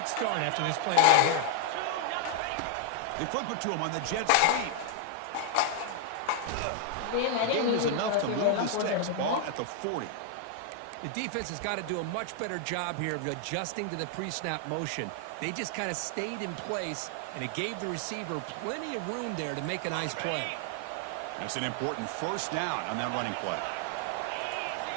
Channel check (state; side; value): different; both; correlation 0.00